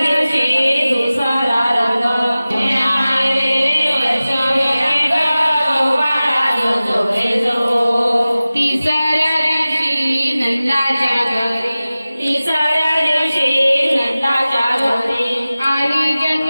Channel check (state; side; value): inverted; both; correlation -0.97